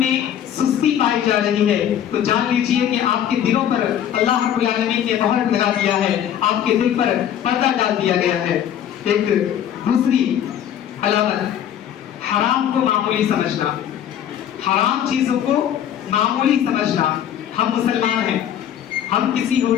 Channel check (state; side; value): quieter; right; 10.1 dB